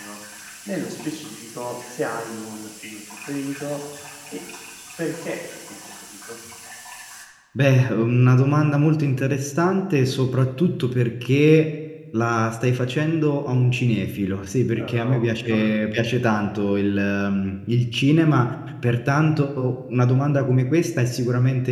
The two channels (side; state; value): both; identical; correlation 1.00